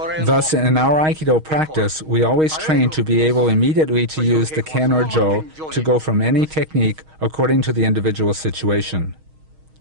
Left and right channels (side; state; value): left; late; 6.4 ms